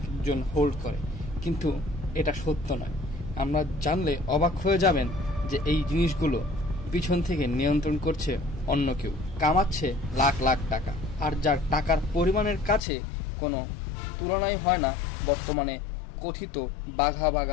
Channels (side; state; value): right; drops out; at 12.8 s